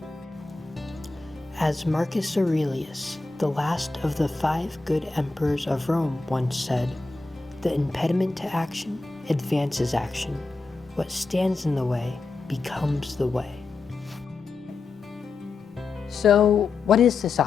As Marcus Aurelius, the last of the 5 good emperors of Rome, once said, "The impediment to action advances action. What stands in the way becomes the way." So, what is this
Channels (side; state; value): right; quieter; 3.8 dB